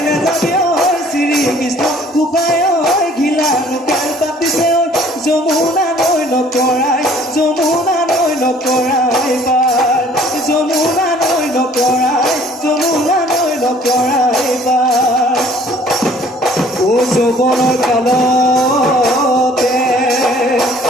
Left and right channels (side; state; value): both; normal; correlation 0.55